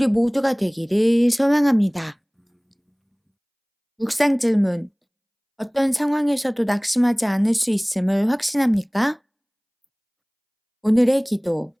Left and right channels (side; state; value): both; identical; correlation 1.00